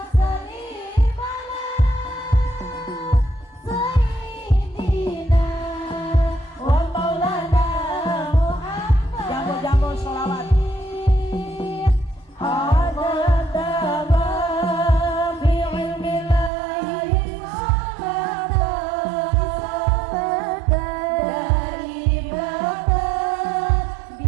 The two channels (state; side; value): drops out; left; at 16.5 s